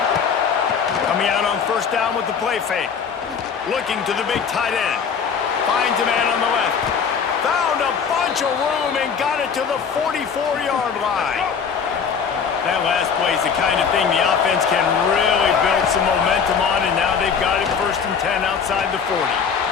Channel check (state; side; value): quieter; right; 6.5 dB